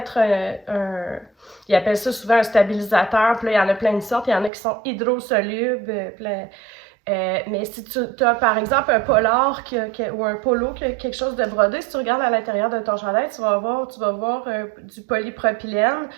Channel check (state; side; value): drops out; left; at 4.5 s